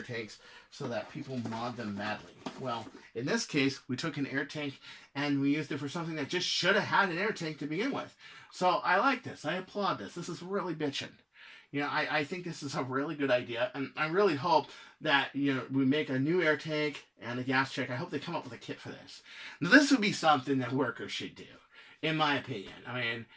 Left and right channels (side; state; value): both; identical; correlation 1.00